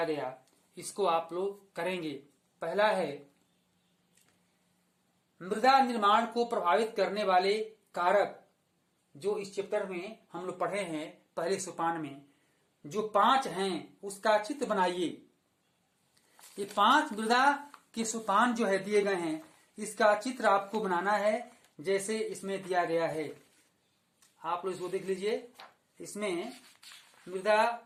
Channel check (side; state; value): both; identical; correlation 1.00